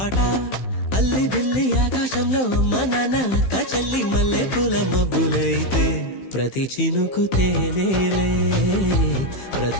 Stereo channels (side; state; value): right; late; 15 ms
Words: అల్లి బిల్లి ఆకాశంలో అమ్మ నాన్న అక్క చెల్లి మల్లె పూల మబ్బులైతే ప్రతి చినుకు తేనేలే